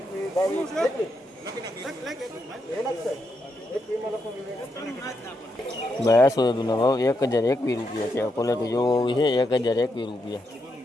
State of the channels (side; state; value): both; normal; correlation 0.82